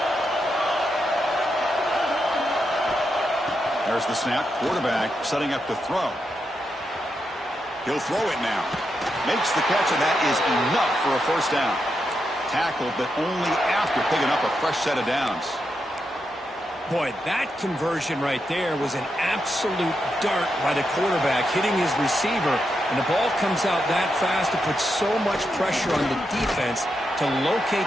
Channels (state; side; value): normal; both; correlation 0.84